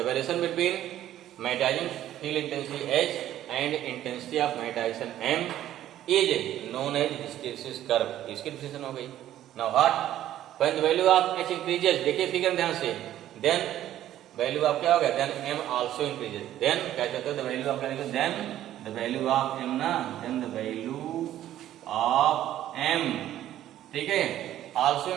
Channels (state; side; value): quieter; left; 12.5 dB